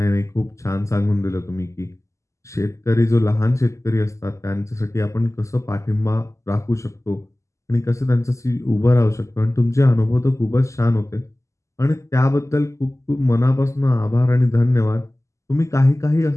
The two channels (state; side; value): late; right; 0.15 ms